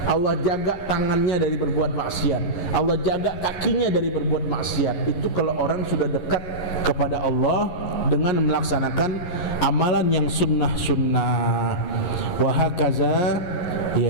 Allah jaga tangannya dari berbuat maksiat, Allah jaga kakinya dari berbuat maksiat. Itu kalau orang sudah dekat kepada Allah dengan melaksanakan amalan yang sunnah-sunnah. Wahakaza,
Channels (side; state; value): right; late; 11 ms